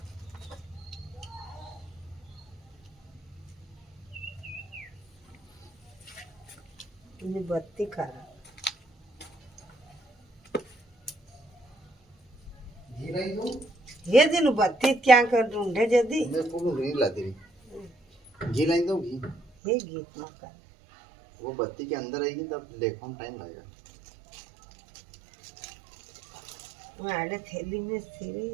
बत्ती खा रहा लाइन दो ये दिन बत्ती क्या कर ढूंढे जदी मैं पूरी घी ला दे घी लाइन दो घी ये गीत ना कर वो बत्ती के अंदर आएगी तब लेखों टाइम लगेगा मैं आड़े थैली में सिरे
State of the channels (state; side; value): drops out; left; at 19.5 s